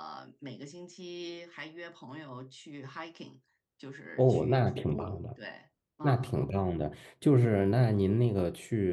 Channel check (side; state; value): both; identical; correlation 1.00